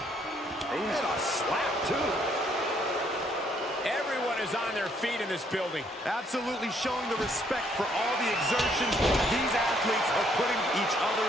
And a slap, too. Everyone is on their feet in this building. Absolutely showing the respect for all the exertion these athletes are putting each other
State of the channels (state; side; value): normal; both; correlation 0.68